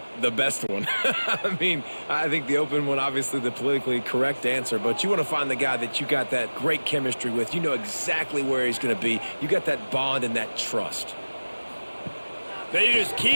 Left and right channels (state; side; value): inverted; both; correlation -1.00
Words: The best one. I mean, I think the open one, obviously the politically correct answer, but you want to find the guy that you got that great chemistry with. You know exactly where he's going to be. You got that bond and that trust. They just